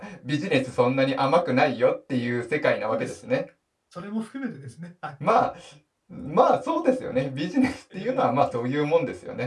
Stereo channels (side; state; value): both; identical; correlation 1.00